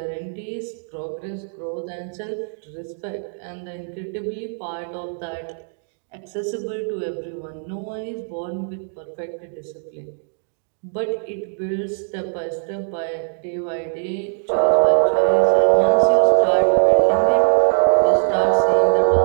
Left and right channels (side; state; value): left; silent; digital silence